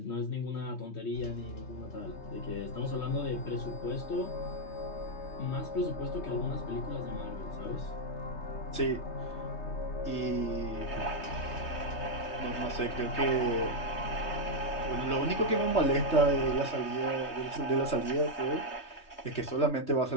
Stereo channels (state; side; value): late; right; 3.2 ms